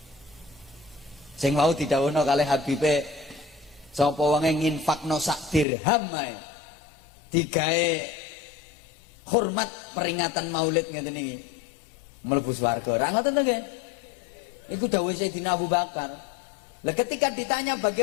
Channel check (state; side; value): drops out; right; at 5.7 s